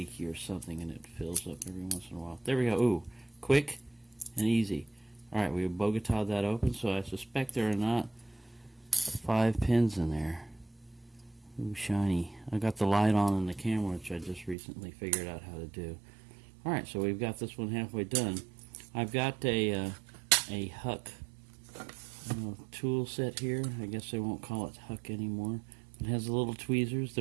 or something, and it fills up every once in a while. There we go. Ooh, quick and easy. Alright, we Bogota'd that open, so I suspect there are not 5 pins in there. Ooh, shiny. I got the light on in the camera, which I just recently figured out how to do. Alright, so we've got this one halfway done. I've got a Huck tool set here. I guess they won't call it Huck anymore. It has the little tweezers.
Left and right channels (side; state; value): left; drops out; at 14.6 s